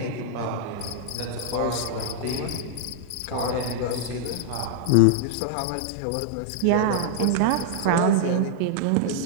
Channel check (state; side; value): different; both; correlation -0.01